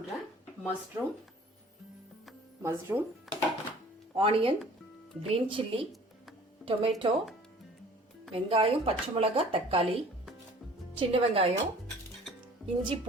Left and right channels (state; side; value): normal; both; correlation 0.50